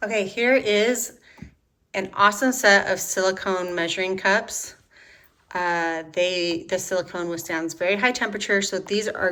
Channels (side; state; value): both; identical; correlation 1.00